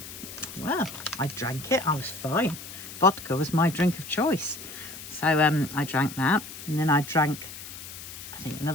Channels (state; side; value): noise; left; hiss, 12 dB below the sound